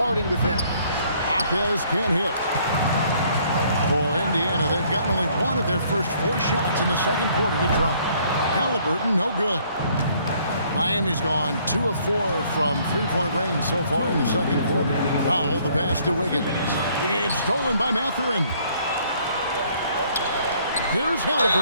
with him. Jaquez can't hit. For Indiana, they've gotten only one of their first 4 shots in the second quarter to drop. Halliburton, no good. Miami's gone 2 of 4 from three-point range so far in the second quarter. Powell, the pass to Wiggins. It's stolen by Mathurin. Here's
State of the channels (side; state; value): both; inverted; correlation -0.63